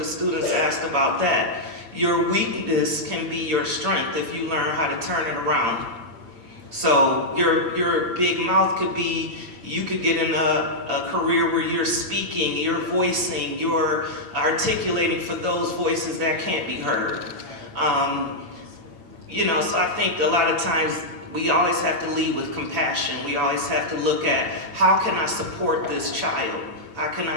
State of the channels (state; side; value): late; left; 8.8 ms